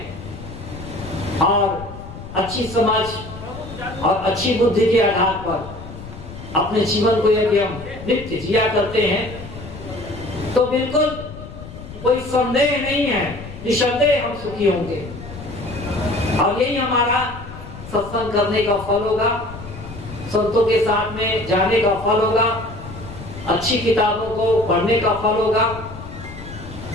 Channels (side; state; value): left; noise; rumble, 13 dB below the sound